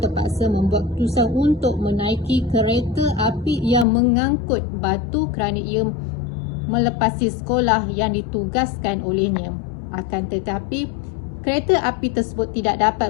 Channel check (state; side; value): drops out; right; at 3.9 s